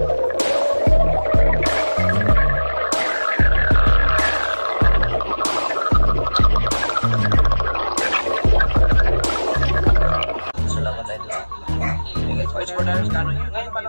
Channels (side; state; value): both; inverted; correlation -1.00